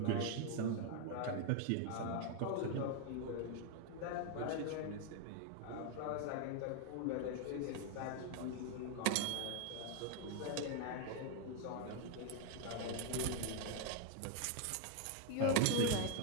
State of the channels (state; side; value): different; both; correlation 0.00